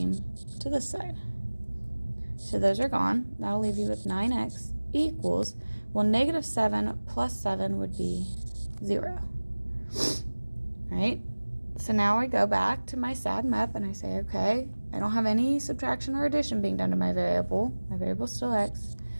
to this side. So those are gone. That'll leave you with 9x equals, well, negative 7 plus 7 would be 0. Right? So now I go back to my SAD MEP and I say, okay, I don't have any subtraction or addition being done to my variable. My variable's still x.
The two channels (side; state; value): both; inverted; correlation -1.00